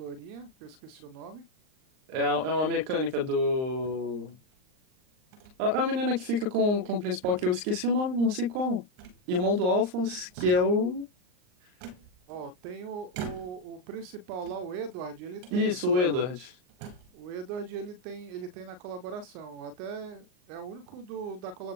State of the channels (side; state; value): left; late; 39 ms